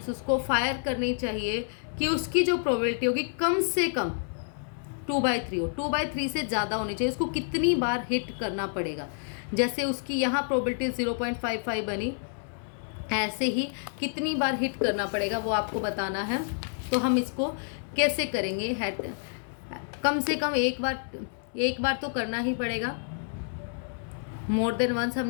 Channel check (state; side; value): silent; right; 59 dB below the other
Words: उसको फायर करनी चाहिए कि उसकी जो प्रोबेबिलिटी होगी कम से कम 2/3 हो, 2/3 से ज़्यादा होनी चाहिए, उसको कितनी बार हिट करना पड़ेगा। जैसे उसकी यहाँ प्रोबेबिलिटी 0.55 बनी, ऐसे ही कितनी बार हिट करना पड़ेगा वो आपको बताना है। तो हम इसको कैसे करेंगे, कम से कम एक बार तो करना ही पड़ेगा। मोर देन वंस हम